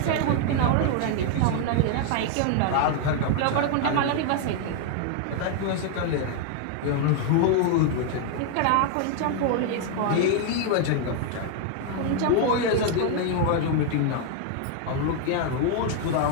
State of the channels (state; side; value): different; both; correlation 0.00